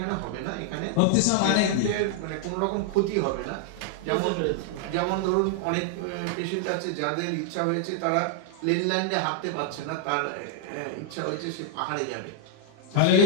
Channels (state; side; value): different; both; correlation 0.00